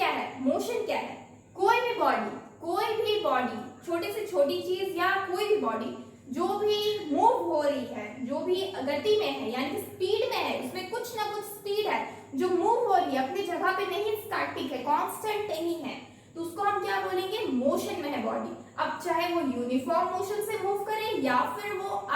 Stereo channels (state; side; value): identical; both; correlation 1.00